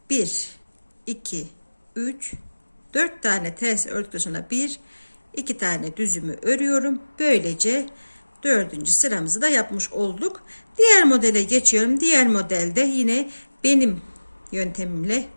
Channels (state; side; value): inverted; both; correlation -1.00